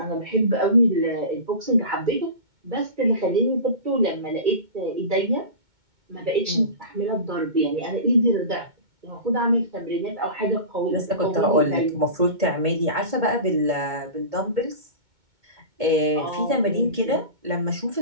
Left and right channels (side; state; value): left; late; 2.2 ms